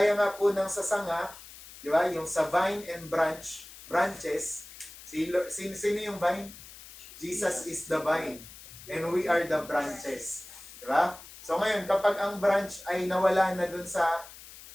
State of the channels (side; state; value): left; noise; hiss, 17 dB below the sound